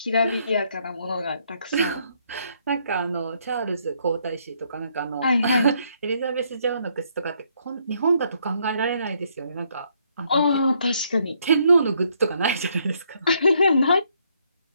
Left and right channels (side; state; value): both; inverted; correlation -0.71